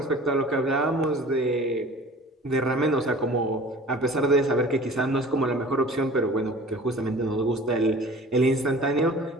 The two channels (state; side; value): normal; both; correlation 0.44